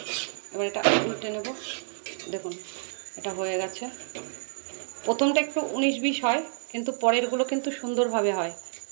এবার এটা উল্টে নেব। দেখুন এটা হয়ে গেছে। প্রথমটা একটু 19-20 হয়, কিন্তু পরেরগুলো কিন্তু সুন্দরভাবে হয়।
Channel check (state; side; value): silent; left; digital silence